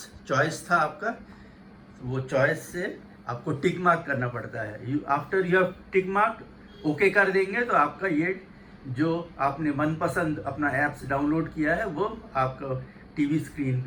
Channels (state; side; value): identical; both; correlation 1.00